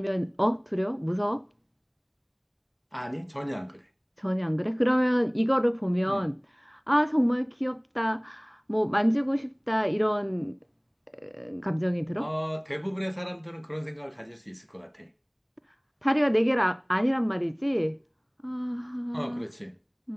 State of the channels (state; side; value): identical; both; correlation 1.00